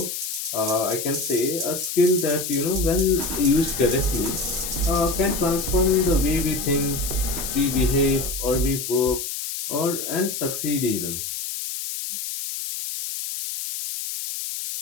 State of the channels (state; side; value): noise; left; hiss, 5 dB below the sound